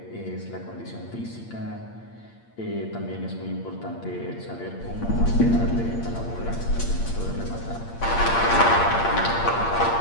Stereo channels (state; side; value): late; right; 8.7 ms